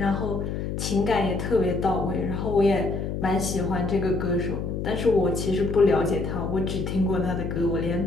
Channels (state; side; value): noise; left; hum, 3 dB below the sound